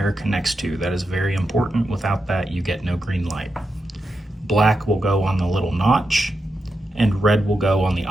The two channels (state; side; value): normal; both; correlation 0.87